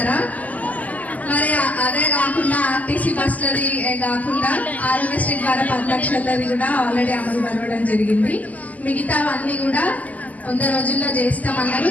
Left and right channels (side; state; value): right; late; 0.077 ms